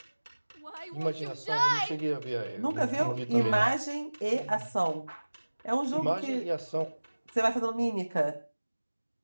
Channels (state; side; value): inverted; both; correlation -1.00